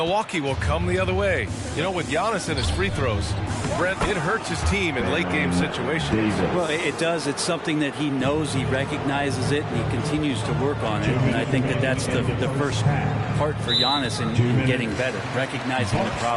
will come the other way. You know, with Giannis and his free throws, Brent, it hurts his team in late-game situations. Well, it does. It's something that he knows, he recognizes it, and he continues to work on it. And I think that that's the first part for Giannis in getting better, recognizing the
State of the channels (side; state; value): both; identical; correlation 1.00